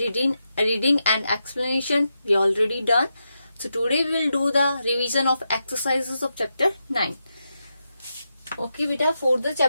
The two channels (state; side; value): inverted; both; correlation -0.86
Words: reading and explanation we already done. So today we will do the revision of exercises of chapter 9. Okay beta, for the